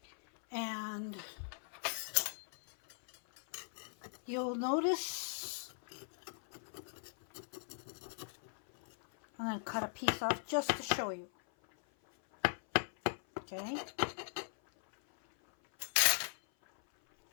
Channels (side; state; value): right; silent; 51 dB below the other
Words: And you'll notice I'm going to cut a piece off just to show you. Okay.